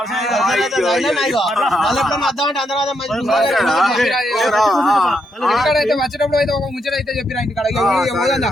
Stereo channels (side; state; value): both; normal; correlation 0.79